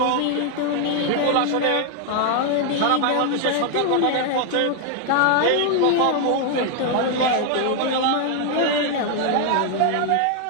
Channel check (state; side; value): different; both; correlation 0.00